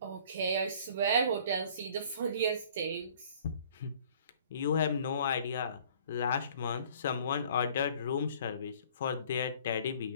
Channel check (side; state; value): both; inverted; correlation -0.53